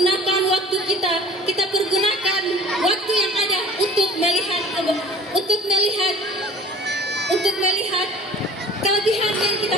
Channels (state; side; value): normal; both; correlation 0.46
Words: waktu kita pergunakan waktu yang ada untuk melihat kelebihan yang kita